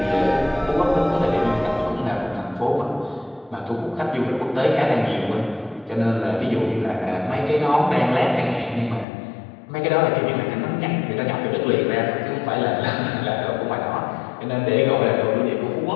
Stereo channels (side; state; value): right; drops out; at 9.1 s